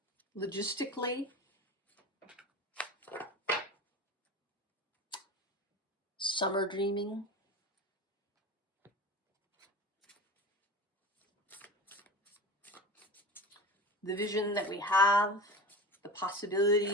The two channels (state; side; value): normal; both; correlation 0.31